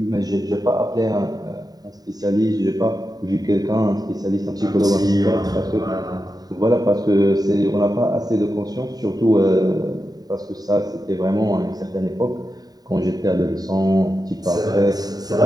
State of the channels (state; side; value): late; left; 0.18 ms